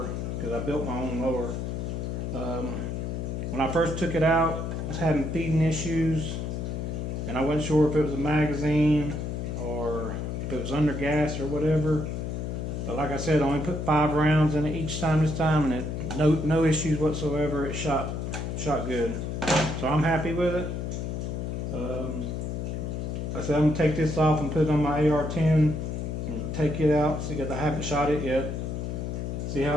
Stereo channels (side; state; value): left; noise; hum, 3 dB below the sound